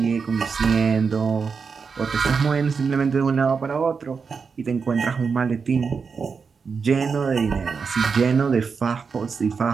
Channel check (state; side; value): quieter; left; 5.5 dB